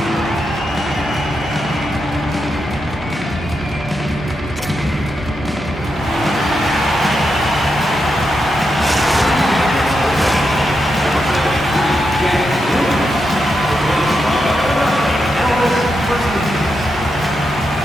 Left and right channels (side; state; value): both; normal; correlation 0.85